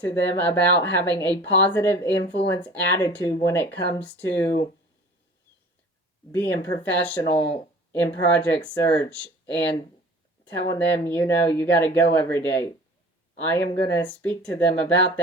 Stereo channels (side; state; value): both; normal; correlation 0.45